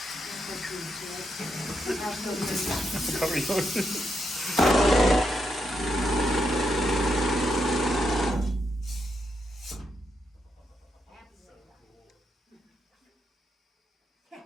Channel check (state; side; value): normal; both; correlation 0.81